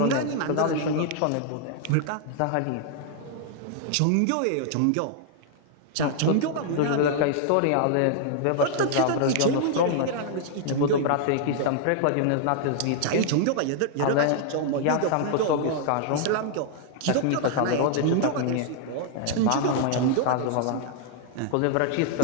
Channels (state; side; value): different; both; correlation -0.01